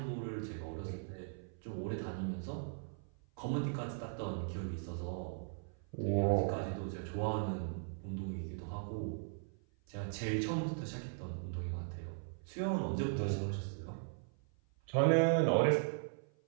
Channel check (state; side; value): silent; left; 52 dB below the other